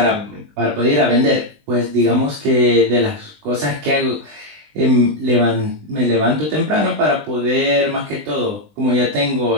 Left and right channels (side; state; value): left; late; 20 ms